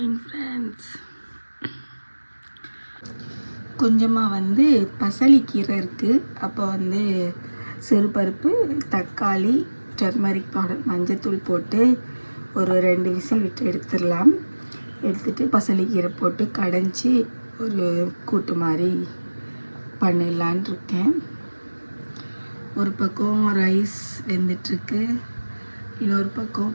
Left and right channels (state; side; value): inverted; both; correlation -1.00